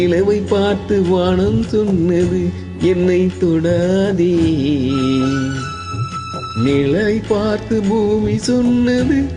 பார்த்து வானம் சொன்னது என்னை தொடாதே. நிழலை பார்த்து பூமி சொன்னது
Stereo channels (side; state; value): both; identical; correlation 1.00